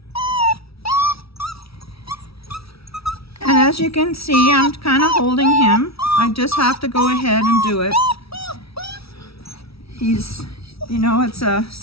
And as you can see, I'm kind of holding him. I just have to go ahead and do it. He's, you know, it's a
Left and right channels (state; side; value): late; right; 0.76 ms